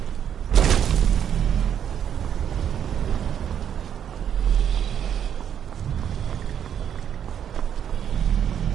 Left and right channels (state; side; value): quieter; left; 9.1 dB